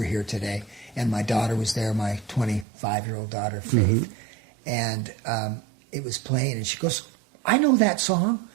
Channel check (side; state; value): left; drops out; at 2.7 s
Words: here today, and my daughter was there, my 25-year-old daughter, Faith, and it was playing, and she goes, "I know that song.